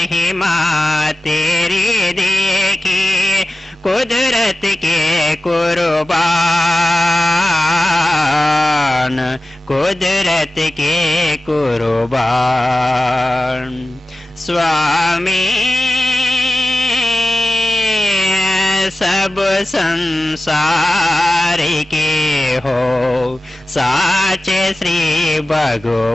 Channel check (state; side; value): normal; both; correlation 0.93